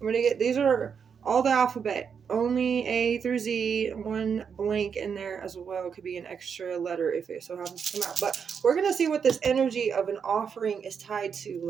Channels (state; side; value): quieter; left; 6.7 dB